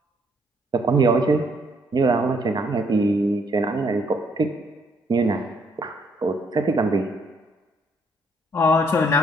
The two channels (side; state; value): both; normal; correlation 0.69